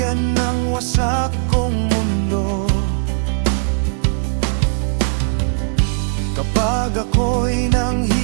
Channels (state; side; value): silent; left; 67 dB below the other